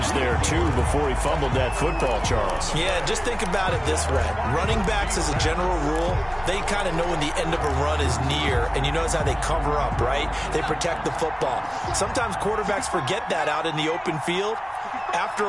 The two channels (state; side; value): identical; both; correlation 1.00